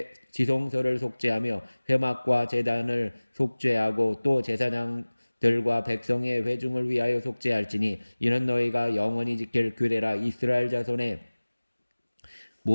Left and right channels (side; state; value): both; inverted; correlation -1.00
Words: 지성소를 속죄하며 회막과 제단을 속죄하고 또 제사장들과 백성의 회중을 위하여 속죄할지니 이는 너희가 영원히 지킬 규례라. 이스라엘 자손의